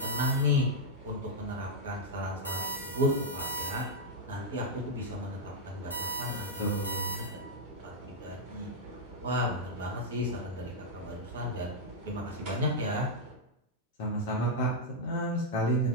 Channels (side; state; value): both; normal; correlation -0.03